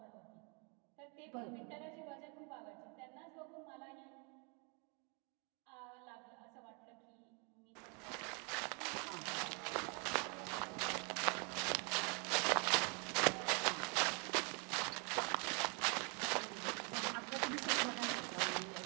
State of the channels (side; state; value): left; quieter; 34.7 dB